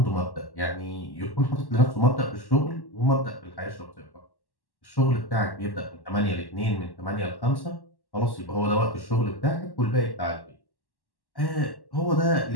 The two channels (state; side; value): late; right; 1.1 ms